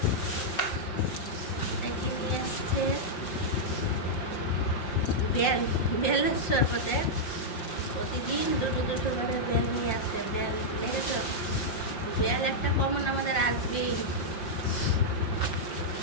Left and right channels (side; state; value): right; late; 5.6 ms